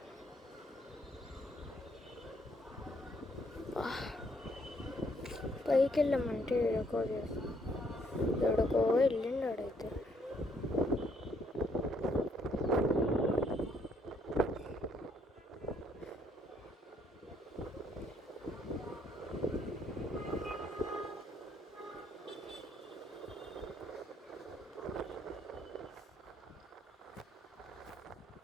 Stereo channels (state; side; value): normal; both; correlation 0.69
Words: పైకి వెళ్ళామంటే ఎడకో వెళ్ళిండు ఆడైతే.